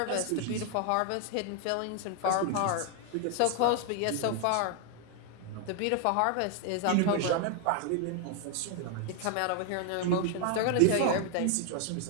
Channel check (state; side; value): different; both; correlation 0.00